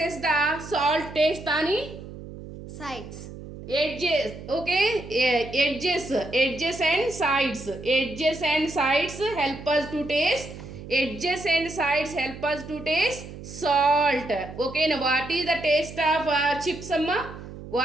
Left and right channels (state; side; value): noise; right; hum, 13 dB below the sound